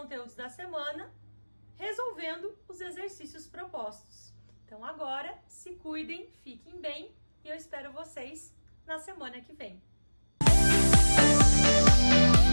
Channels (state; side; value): inverted; both; correlation -1.00